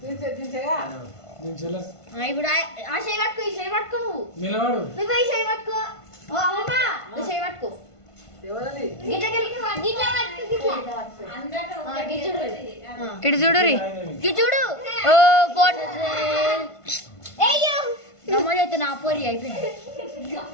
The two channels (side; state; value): right; late; 1.5 ms